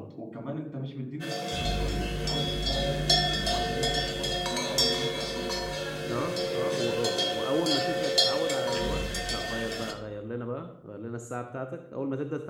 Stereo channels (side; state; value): both; identical; correlation 1.00